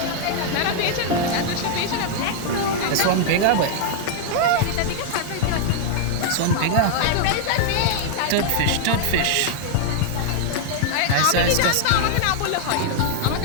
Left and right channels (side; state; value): both; different; correlation 0.00